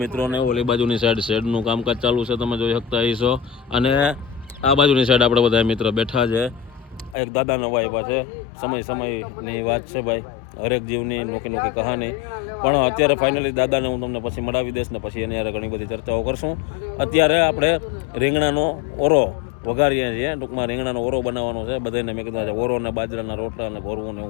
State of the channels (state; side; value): drops out; right; at 7.2 s